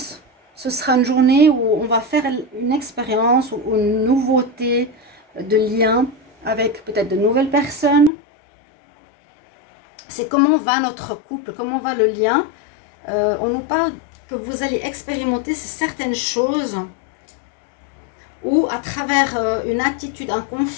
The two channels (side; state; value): right; drops out; at 8.1 s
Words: Ce sera une journée où on va faire une expérience ou une nouveauté de lien avec peut-être de nouvelles personnes. C'est comment va notre couple, comment va le lien. On nous parle que vous allez expérimenter certaines choses ou à travers une attitude, un